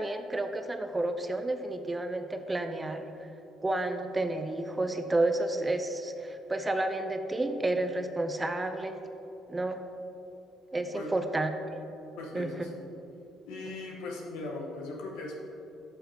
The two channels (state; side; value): normal; both; correlation 0.85